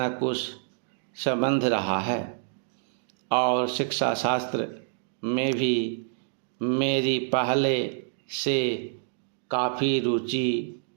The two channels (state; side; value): silent; left; digital silence